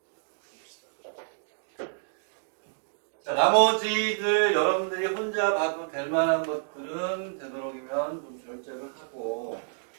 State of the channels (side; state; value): left; silent; digital silence